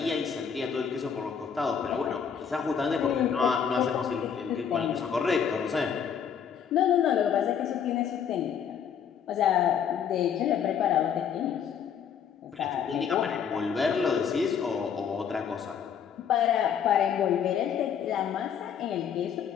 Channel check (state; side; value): quieter; right; 7.7 dB